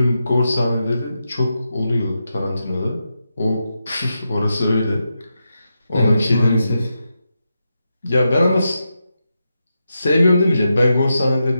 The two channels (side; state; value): both; inverted; correlation -0.87